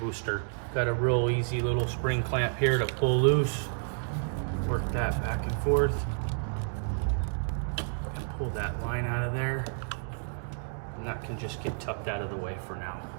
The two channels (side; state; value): left; silent; digital silence